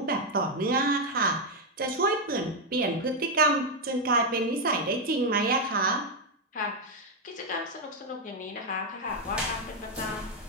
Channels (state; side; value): normal; both; correlation 0.02